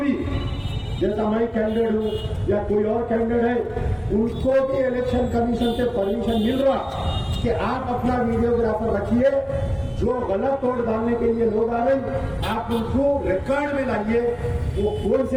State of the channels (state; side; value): identical; both; correlation 1.00